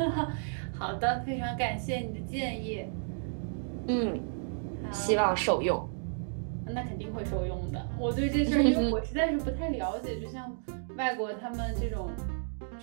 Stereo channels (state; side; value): silent; left; digital silence